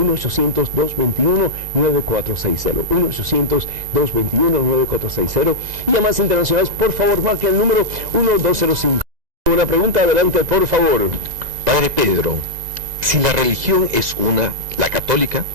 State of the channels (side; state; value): left; late; 2.0 ms